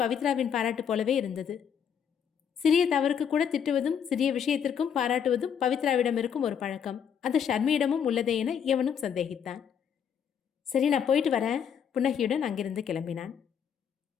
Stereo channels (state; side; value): quieter; right; 7.9 dB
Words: பாராட்டு போலவே இருந்தது. சிறிய தவறுக்கு கூட திட்டுவதும் சிறிய விஷயத்திற்கும் பாராட்டுவதும் பவித்ராவிடம் இருக்கும் ஒரு பழக்கம். அது ஷர்மியிடமும் உள்ளதே என எவனும் சந்தேகித்தான். சரி, நான் போயிட்டு வரேன், புன்னகையுடன் அங்கிருந்து கிளம்பினான்.